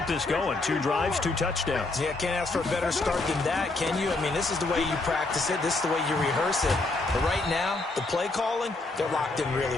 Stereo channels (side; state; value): right; quieter; 3.2 dB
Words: this going. 2 drives, 2 touchdowns. Yeah, can't ask for a better start than that, can you? I mean, this is the way you practice it. This is the way you rehearse it. But right now, the play calling, they're locked in really